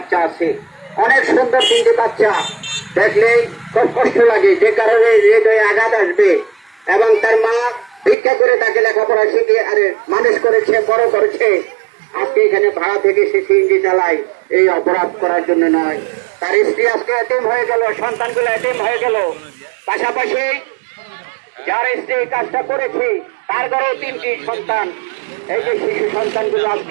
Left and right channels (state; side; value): drops out; left; at 8.2 s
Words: আছে। অনেক সুন্দর 3টি বাচ্চা, দেখলেই খুব কষ্ট লাগে, যে কারণে হৃদয়ে আঘাত আসবে। এবং তার মা ভিক্ষা করে তাকে লেখাপড়া শিখিয়ে মানুষ করেছে, বড় করেছে। আজকে এখানে ভাড়া থেকে সে সিএনজি চালায়, এই অপরাধ করার জন্য নয়। তার স্ত্রী আজকে এতিম হয়ে গেল, সন্তানগুলো এতিম হয়ে গেল। পাশাপাশি যার স্ত্রী কাজটা করেছে তার ঘরেও 3টি সন্তান। এই যে শিশু সন্তানগুলো